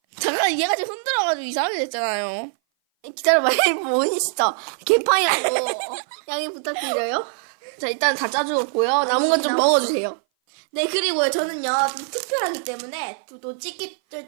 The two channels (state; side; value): silent; left; 58 dB below the other